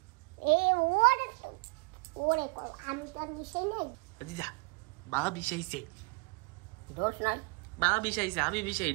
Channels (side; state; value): left; quieter; 29.0 dB